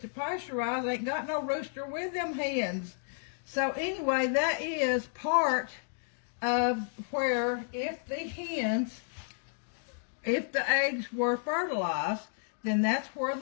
pasteurized ain't got no rooster with them hens. So anyway, that is part of where if the eggs were fertilized, then that's where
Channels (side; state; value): right; silent; digital silence